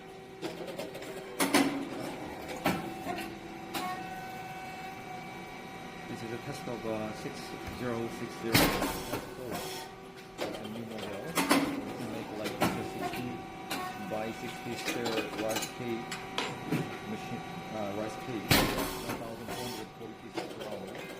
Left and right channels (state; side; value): identical; both; correlation 1.00